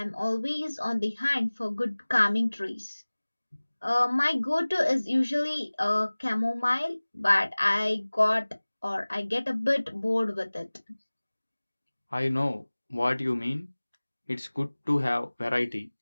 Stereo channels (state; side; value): inverted; both; correlation -1.00